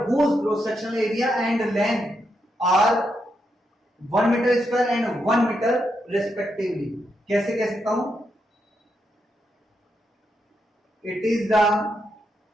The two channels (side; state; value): both; normal; correlation 0.82